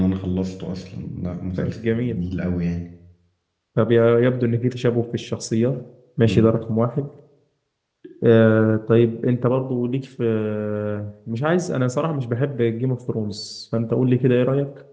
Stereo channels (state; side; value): identical; both; correlation 1.00